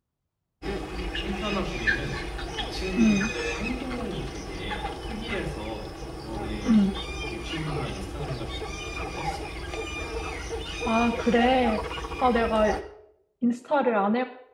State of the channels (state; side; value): identical; both; correlation 1.00